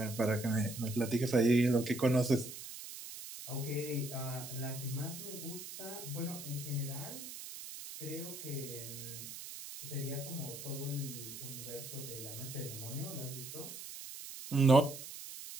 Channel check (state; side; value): noise; right; hiss, 10 dB below the sound